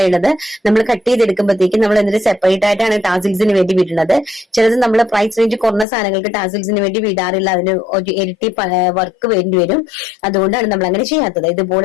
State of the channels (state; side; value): drops out; right; at 5.9 s